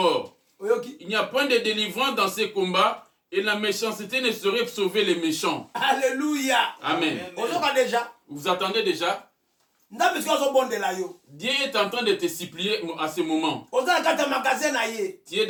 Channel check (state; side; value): identical; both; correlation 1.00